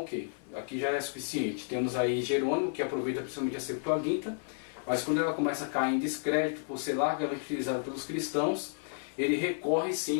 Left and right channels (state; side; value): silent; right; 57 dB below the other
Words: ok, aqui já é suficiente. Temos aí Jerônimo, que aproveita principalmente a Septuaginta, mas quando ela começa a cair em descrédito por ser largamente utilizada pelos cristãos, ele recorre